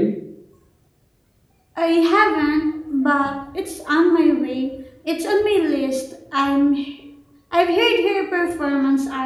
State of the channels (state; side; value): identical; both; correlation 1.00